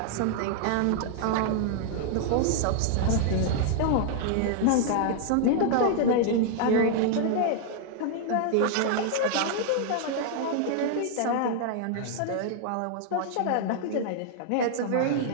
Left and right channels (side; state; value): both; different; correlation -0.01